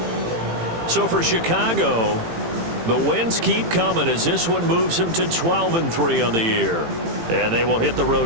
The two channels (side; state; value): left; late; 18 ms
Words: So for Chicago, The wins keep coming as this one moves them to 12-3 on the year. And they will hit the